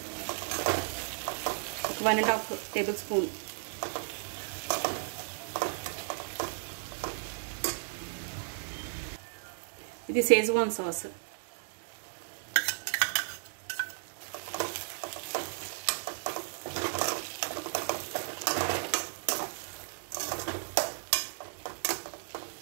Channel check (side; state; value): left; silent; digital silence